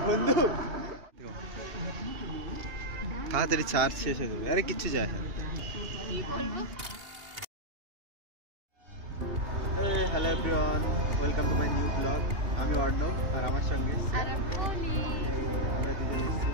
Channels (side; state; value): left; late; 2.8 ms